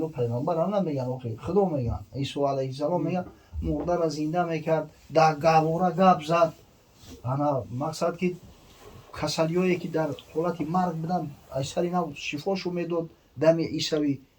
پیغمبر هم نمیگن، آخه خدا میگن. عیسی علیه السلام میگه مرده را زنده میکرد، در گواره گپ زد. انا مقصد که کسلیایی که در حالت مرگ بودن ایسری نبود، شفاشو میداد دم عیسوی.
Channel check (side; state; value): both; identical; correlation 1.00